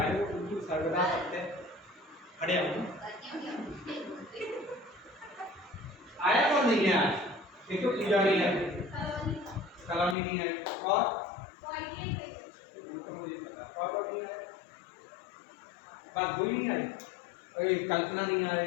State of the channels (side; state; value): right; drops out; at 10.2 s